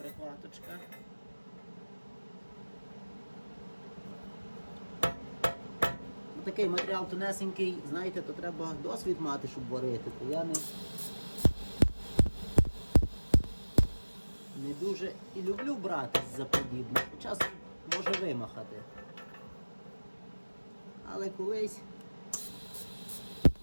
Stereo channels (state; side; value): inverted; both; correlation -1.00